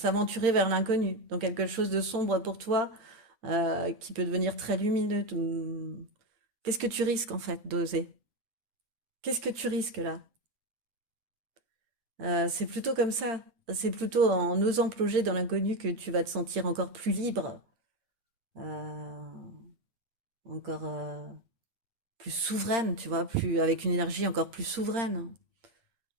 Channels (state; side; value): late; left; 8.8 ms